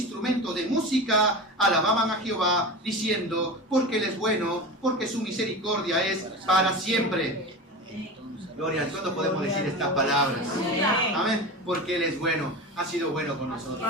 de música, alababan a Jehová, diciendo, porque Él es bueno, porque su misericordia es para siempre. Gloria a Dios. ¿Cuándo podemos decir estas palabras? Amén. Porque Él es bueno. Ha sido bueno con nosotros.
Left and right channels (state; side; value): normal; both; correlation 0.28